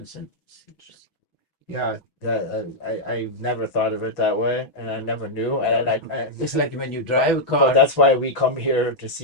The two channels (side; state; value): right; late; 6.1 ms